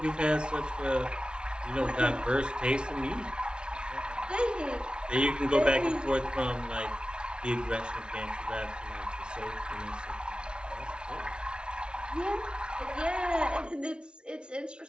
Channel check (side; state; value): left; late; 0.056 ms